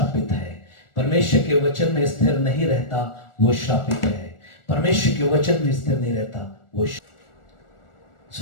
है। परमेश्वर के वचन में स्थिर नहीं रहता वो श्रापित है। परमेश्वर के वचन में स्थिर नहीं रहता वो।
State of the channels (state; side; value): late; right; 1.4 ms